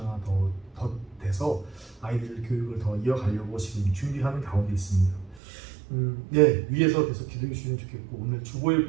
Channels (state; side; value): drops out; left; at 5.4 s